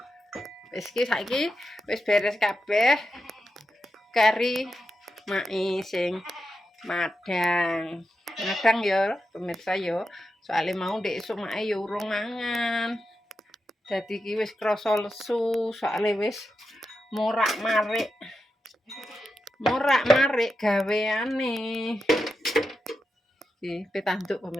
Wis iki saiki wis beres kabeh. Kari mae sing madang. Madang ya pemirsa ya. Soale mau ndek esuk mae ya urung mangan. Dadi iki wis krasa lesu, soale wis morak-marik. Morak-marik gaweane. Iki petanduk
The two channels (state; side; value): normal; both; correlation 0.88